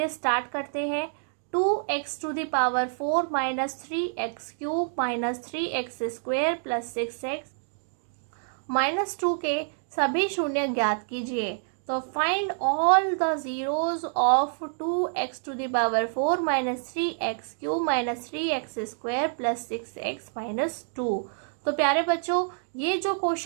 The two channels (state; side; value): silent; left; digital silence